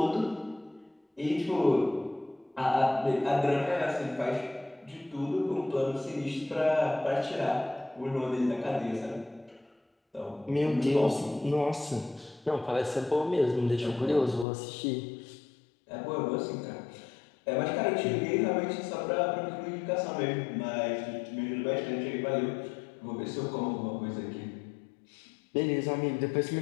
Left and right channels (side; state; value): right; drops out; at 14.5 s